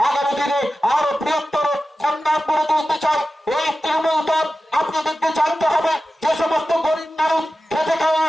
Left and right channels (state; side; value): normal; both; correlation 0.94